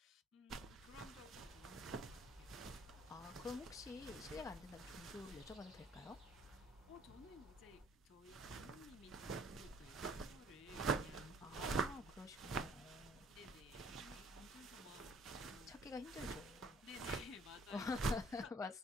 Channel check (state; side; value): normal; both; correlation 0.58